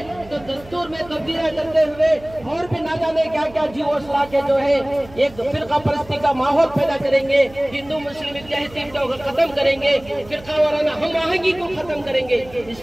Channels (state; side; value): noise; right; hum, 21 dB below the sound